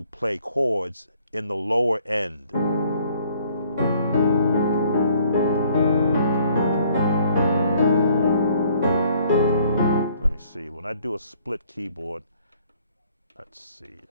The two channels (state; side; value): inverted; both; correlation -0.62